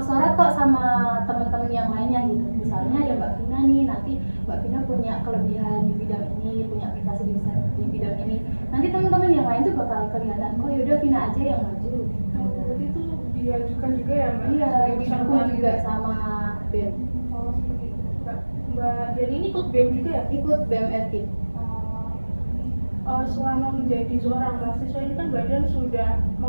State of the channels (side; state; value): both; inverted; correlation -1.00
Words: kok sama teman-teman yang lainnya gitu. Misalnya ada Mbak Vina nih, nanti Mbak Vina punya kelebihan di bidang ini, punya prestasi di bidang ini. Nanti teman-teman yang lain tuh bakal kelihatan, oh yaudah Vina aja yang maju. Berarti itu diajukan juga ya Mbak? Iya, Sebagai didukung peserta juga gitu. sama BEM. Oh seperti itu. Mbak Dian ini ikut BEM juga ya? Ikut BEM FKIP. Selama menjadi seorang mahasiswa ini kan Mbak Dian sudah